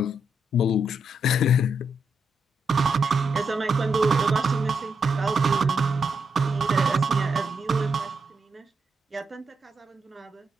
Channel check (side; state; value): both; normal; correlation 0.81